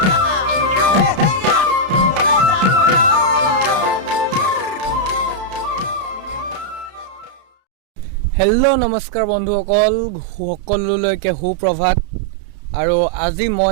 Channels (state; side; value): late; left; 32 ms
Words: হেল্ল' নমস্কাৰ বন্ধুসকল, সকলোলৈকে সুপ্ৰভাত। আৰু আজি